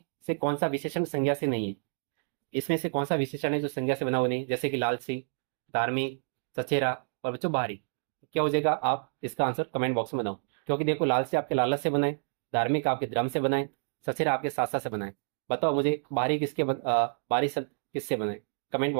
से कौन सा विशेषण संज्ञा से नहीं है? इसमें से कौन सा विशेषण है जो संज्ञा से बना हुआ नहीं? जैसे कि लालची, धार्मिक, सचेरा और बच्चों बाहरी। तो क्या हो जाएगा? आप इसका आंसर कमेंट बॉक्स में बनाओ। क्योंकि देखो लालची आपके लालच से बनाए, धार्मिक आपके धर्म से बनाए, सचेरा आपके सासा से बनाए। बताओ मुझे बाहरी बाहरी शब्द किससे बनाए? कमेंट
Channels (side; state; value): left; silent; digital silence